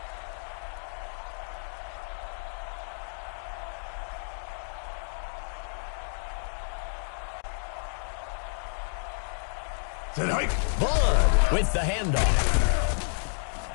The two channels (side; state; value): right; silent; 58 dB below the other